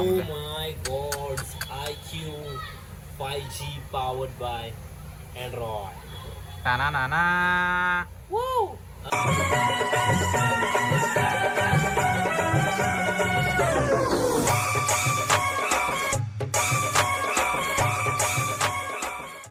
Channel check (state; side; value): identical; both; correlation 1.00